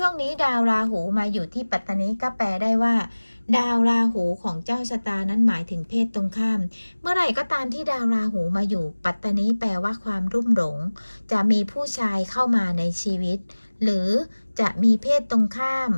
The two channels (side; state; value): both; inverted; correlation -1.00